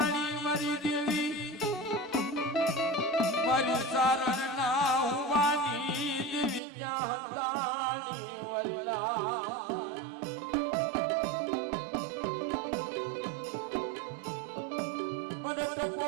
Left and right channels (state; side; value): drops out; left; at 6.6 s